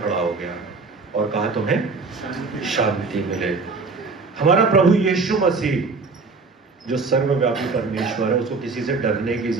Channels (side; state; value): left; quieter; 4.2 dB